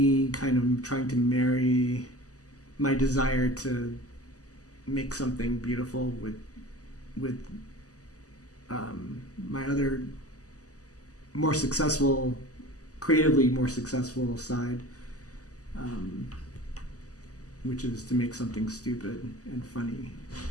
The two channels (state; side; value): late; right; 0.67 ms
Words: kind of trying to marry my desire to make something beautiful with my other more successful, creatively more successful side, which is to make something stupid and funny.